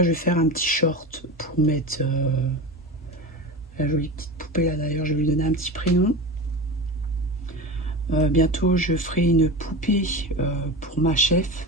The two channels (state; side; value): normal; both; correlation 0.27